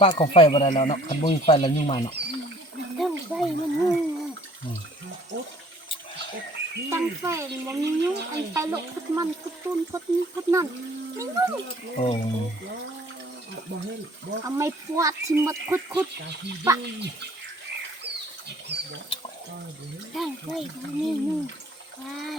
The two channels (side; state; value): both; normal; correlation 0.55